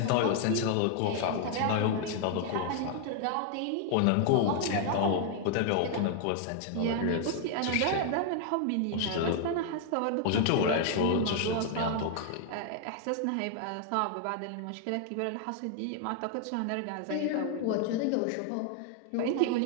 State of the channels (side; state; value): both; different; correlation 0.00